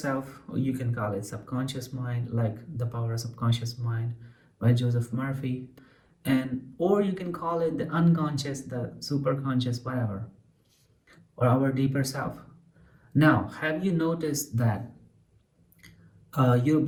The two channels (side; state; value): both; identical; correlation 1.00